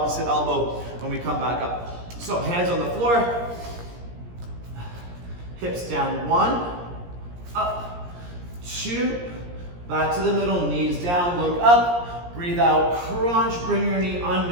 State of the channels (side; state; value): left; late; 17 ms